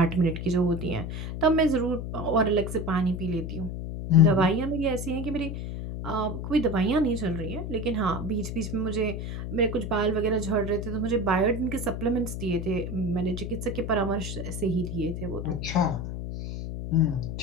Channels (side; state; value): left; noise; hum, 6 dB below the sound